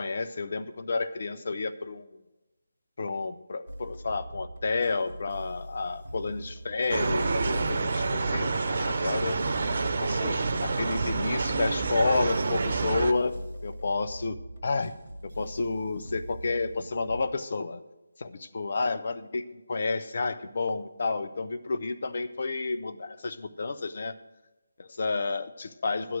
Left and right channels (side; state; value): both; inverted; correlation -0.89